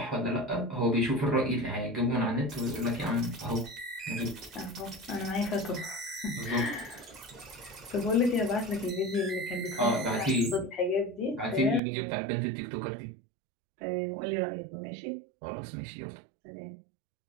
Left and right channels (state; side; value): drops out; left; at 11.8 s